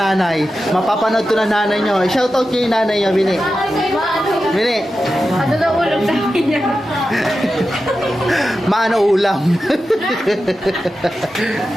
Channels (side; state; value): both; normal; correlation 0.91